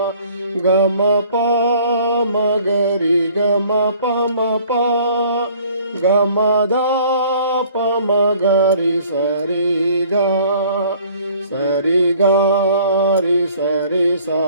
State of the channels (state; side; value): inverted; both; correlation -0.54